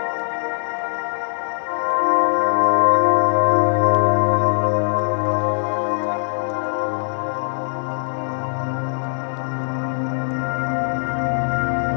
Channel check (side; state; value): right; silent; digital silence